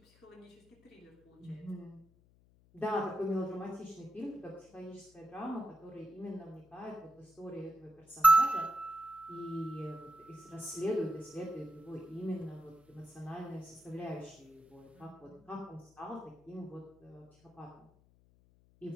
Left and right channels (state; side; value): noise; left; hum, 29 dB below the sound